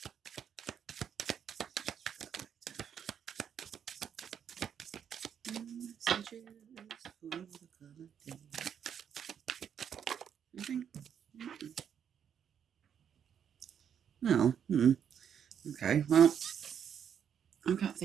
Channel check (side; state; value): left; quieter; 8.3 dB